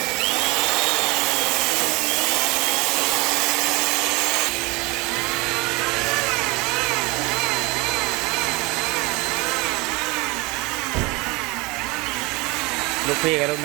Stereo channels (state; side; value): quieter; left; 24.9 dB